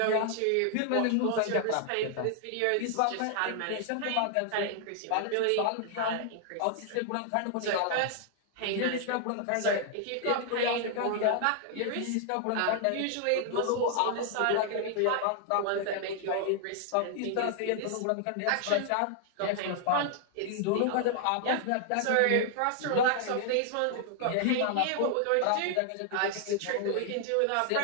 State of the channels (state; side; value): different; both; correlation 0.00